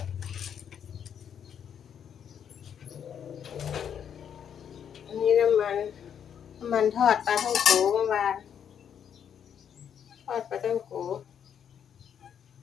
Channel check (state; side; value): quieter; right; 8.4 dB